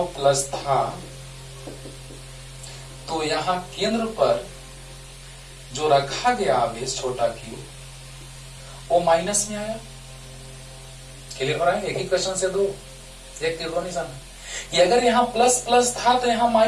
प्लस था, तो यहाँ केंद्र पर जो रखा गया आवेश छोटा क्यू, वो माइनस में आया। क्लियर हो रहा है? एक ही क्वेश्चन से दो, एक तीर दो निशान। ये अगर यहाँ प्लस प्लस था तो यहाँ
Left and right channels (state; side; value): identical; both; correlation 1.00